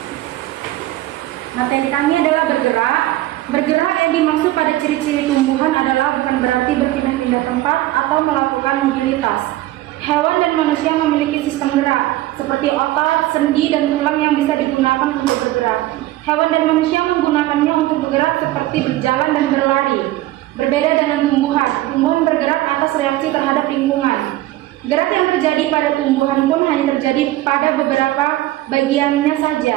Materi kami adalah bergerak. Bergerak yang dimaksud pada ciri-ciri tumbuhan adalah bukan berarti berpindah-pindah tempat atau melakukan mobilitas. Hewan dan manusia memiliki sistem gerak, seperti otot, sendi, dan tulang yang bisa digunakan untuk bergerak. Hewan dan manusia menggunakannya untuk bergerak seperti berjalan dan berlari. Berbeda dengan tumbuhan. Tumbuhan bergerak atas reaksi terhadap lingkungan. Gerak yang terjadi pada tumbuhan pun hanya terjadi pada beberapa bagiannya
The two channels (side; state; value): left; quieter; 16.3 dB